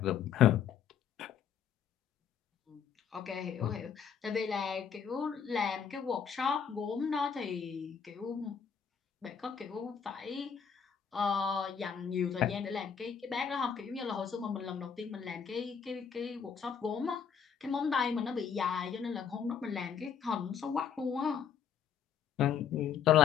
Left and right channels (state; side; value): quieter; right; 7.3 dB